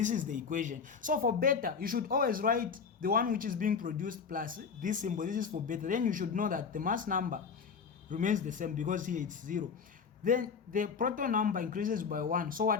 is the equation. So for beta, you should always write the one which is being produced plus this symbol. This is for beta. Then you should know that the mass number remains the same because here it's 0. Then the proton number increases by 1. So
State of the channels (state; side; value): quieter; right; 5.9 dB